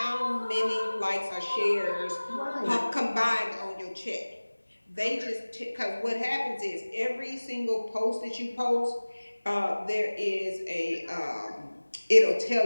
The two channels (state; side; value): inverted; both; correlation -1.00